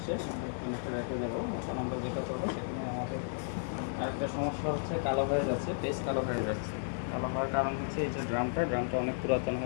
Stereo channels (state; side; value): silent; right; digital silence